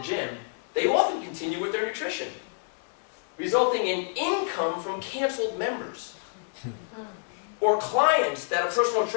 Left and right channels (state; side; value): silent; right; digital silence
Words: gym, they often continue with their nutrition, resulting in income from canceled members. Or clients that a personal